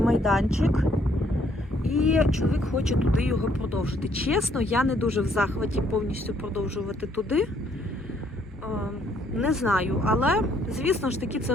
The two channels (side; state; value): both; normal; correlation 0.67